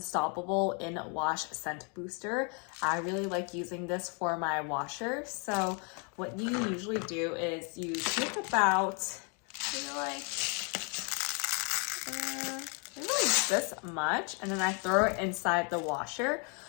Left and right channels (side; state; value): right; quieter; 36.0 dB